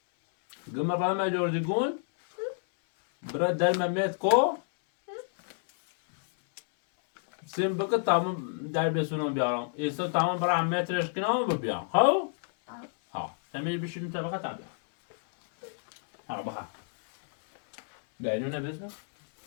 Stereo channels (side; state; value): right; silent; 58 dB below the other